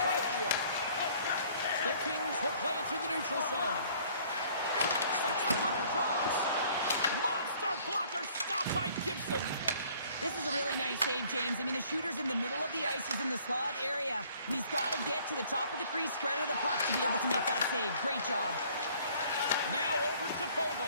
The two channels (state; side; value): inverted; both; correlation -0.57